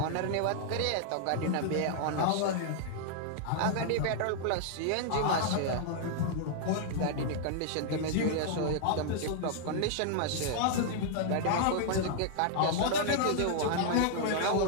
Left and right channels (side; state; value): both; different; correlation -0.01